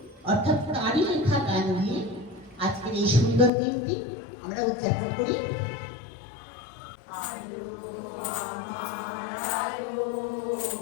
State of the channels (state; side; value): drops out; right; at 3.5 s